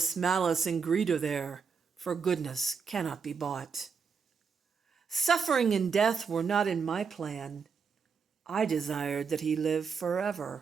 malice, and greed are there, for goodness cannot be bought. Suffering and death were not in my plan. I desired that he live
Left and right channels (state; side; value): quieter; left; 5.8 dB